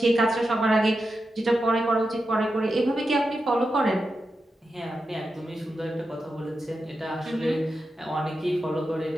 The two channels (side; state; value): both; normal; correlation 0.89